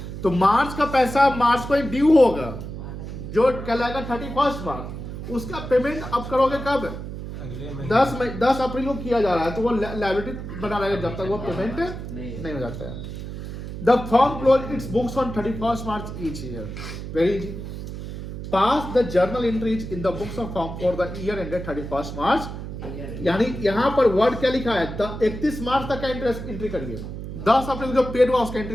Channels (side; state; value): right; noise; hum, 8 dB below the sound